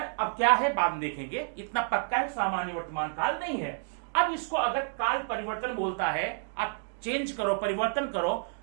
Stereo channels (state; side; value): silent; left; digital silence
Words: क्या है बाद में देखेंगे, इतना पक्का है सामान्य वर्तमान काल नहीं है। अब इसको अगर काल परिवर्तन बोलता है, आप चेंज करो, परिवर्तन करो,